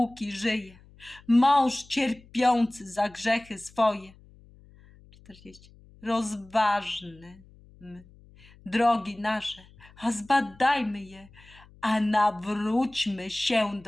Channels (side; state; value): left; noise; hum, 25 dB below the sound